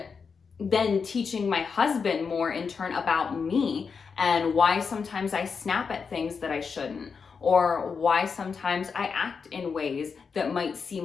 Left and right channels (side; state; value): right; quieter; 5.6 dB